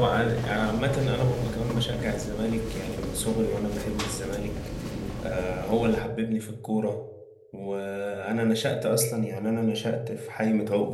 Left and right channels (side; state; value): both; identical; correlation 1.00